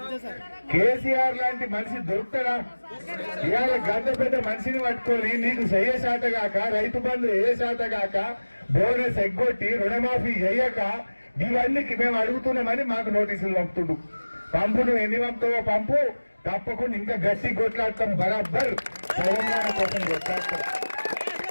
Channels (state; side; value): inverted; both; correlation -1.00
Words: కేసీఆర్ లాంటి మనిషి దొరుకుతాడా? ఇవాళ గద్ద పెద్ద మనిషిని పట్టుకొని నీకు చెయ్య శాతగాక, రైతు బంధు ఏ శాతగాక, బోనస్ ఎగ్గొట్టి రుణమాఫీ చెయ్యక, ఇవన్నీ మేము అడుగుతున్నామని మాకు నోటీసులు పంపుతుండు. పంపు నువ్వు ఎన్ని పంపుతావో పంపు, తప్పకుండా ఇంకా గట్టి కొట్లాడతాం, బరాబర్ తెలంగాణ కోసం కొట్లాడతాం.